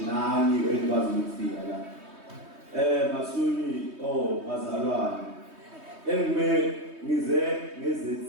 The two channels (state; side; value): late; left; 3.2 ms